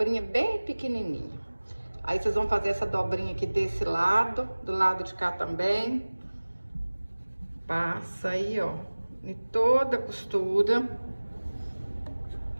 bem pequenininha. Aí, vocês vão fazer essa dobrinha aqui desse lado, do lado de cá também. Passa aí, ó, em toda a costura,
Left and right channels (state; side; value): inverted; both; correlation -1.00